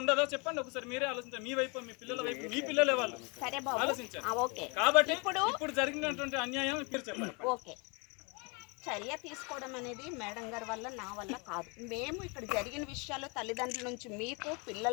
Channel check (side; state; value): right; quieter; 31.3 dB